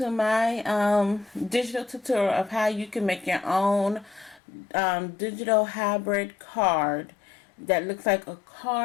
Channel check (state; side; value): drops out; right; at 4.4 s